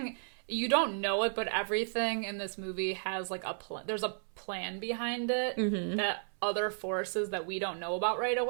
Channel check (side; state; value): left; silent; 55 dB below the other